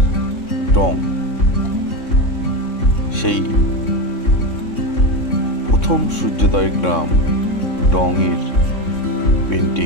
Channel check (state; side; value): late; right; 3.6 ms